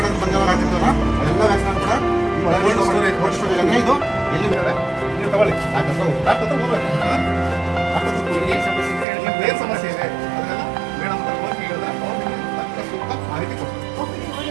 ಅಂತ ಬಂದಾಗ ಹಾಕಿರ್ತೀವಲ್ಲ, ಅದೆಲ್ಲ ವ್ಯಾಕ್ಸಿನ್ ಕೂಡ ಕೋಲ್ಡ್ ಸ್ಟೋರೇಜ್ ಅಂದರೆ ಇದು ಎಲ್ಲಿ ಬರ್ತದೆ ನೀವು ತಗೊಳ್ಳಿ. ಏನು ಸಮಸ್ಯೆ ಇದೆ ಅದನ್ನೆಲ್ಲ ಮೇಡಮ್ ಹೋಗಿ ಹೇಳಿದ್ರೆ ಅವ್ರು ಸೂಕ್ತ ಮಾಹಿತಿ ಕೊಡ್ತಾರೆ.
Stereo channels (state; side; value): drops out; left; at 9.1 s